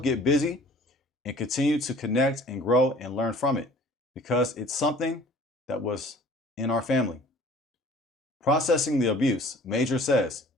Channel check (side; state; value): both; normal; correlation 0.50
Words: busy and continue to connect and grow and learn from it, because it's something that was in our family. Processing the abuse, Major says,